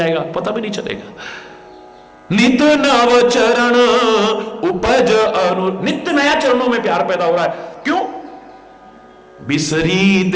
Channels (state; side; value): identical; both; correlation 1.00